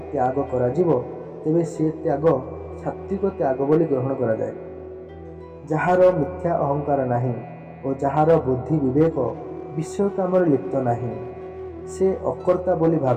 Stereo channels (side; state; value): both; identical; correlation 1.00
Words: ତ୍ୟାଗ କରାଯିବ, ତେବେ ସେ ତ୍ୟାଗ ସାତ୍ତ୍ୱିକ ତ୍ୟାଗ ବୋଲି ଗ୍ରହଣ କରାଯାଏ। ଯାହାର ମିଥ୍ୟା ଅହଙ୍କାର ନାହିଁ ଓ ଯାହାର ବୁଦ୍ଧି ବିବେକ ବିଷୟ କାମରେ ଲିପ୍ତ ନାହିଁ, ସେ ଅକର୍ତ୍ତା ବୋଲି